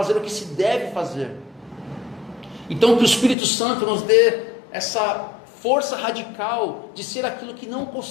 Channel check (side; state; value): right; drops out; at 3.4 s